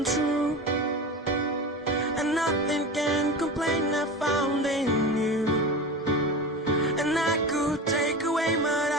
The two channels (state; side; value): normal; both; correlation 0.28